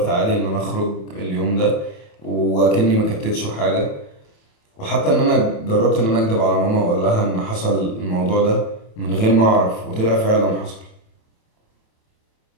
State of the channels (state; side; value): late; right; 27 ms